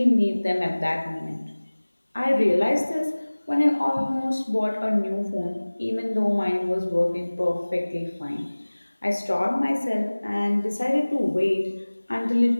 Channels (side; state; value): both; inverted; correlation -1.00